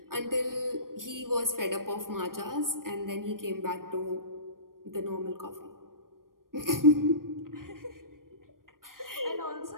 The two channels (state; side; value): late; left; 0.91 ms